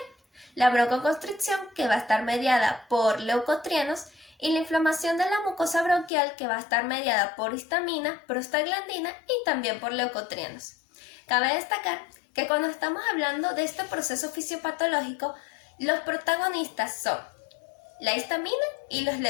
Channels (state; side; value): drops out; right; at 6.1 s